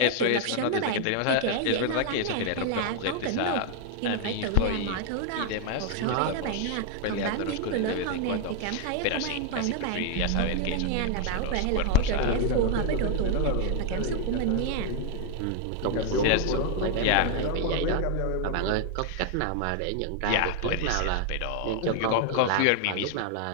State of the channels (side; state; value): both; different; correlation 0.00